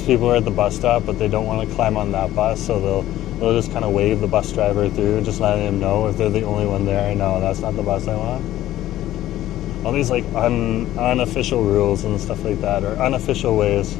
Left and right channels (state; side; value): quieter; right; 14.0 dB